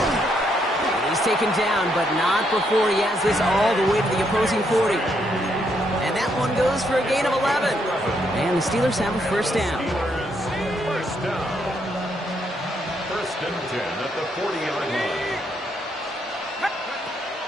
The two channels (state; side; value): normal; both; correlation 0.75